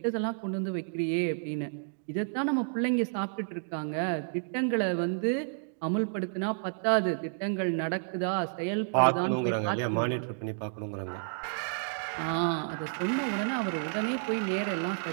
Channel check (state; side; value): silent; left; digital silence